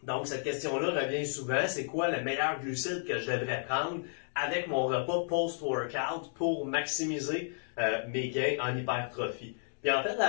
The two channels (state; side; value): silent; right; digital silence